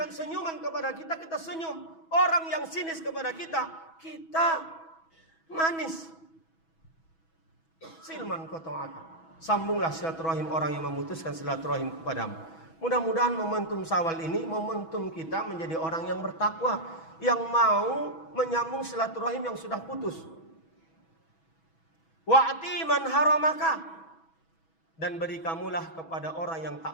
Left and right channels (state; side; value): late; right; 6.1 ms